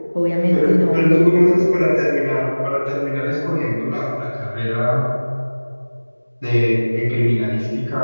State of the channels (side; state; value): both; inverted; correlation -1.00